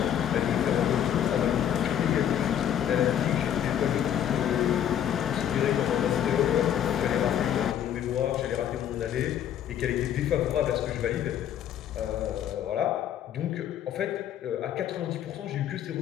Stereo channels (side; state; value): right; quieter; 10.0 dB